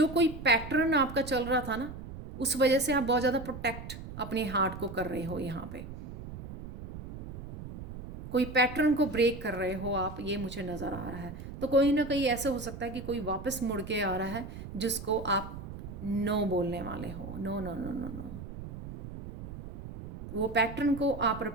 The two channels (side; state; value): right; noise; rumble, 11 dB below the sound